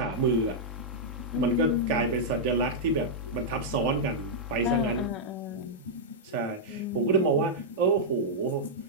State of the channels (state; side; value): normal; both; correlation -0.08